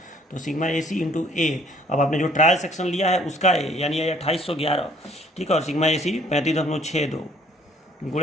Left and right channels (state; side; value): normal; both; correlation 0.60